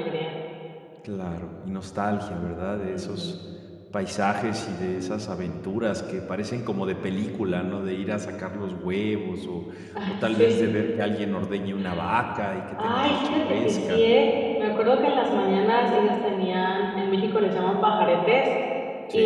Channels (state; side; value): identical; both; correlation 1.00